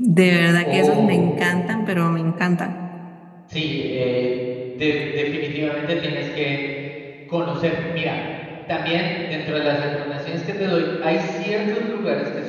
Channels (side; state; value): both; identical; correlation 1.00